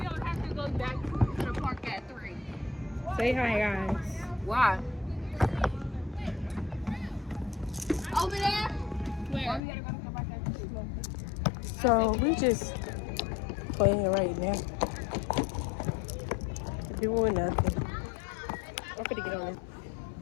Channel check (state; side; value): drops out; right; at 9.6 s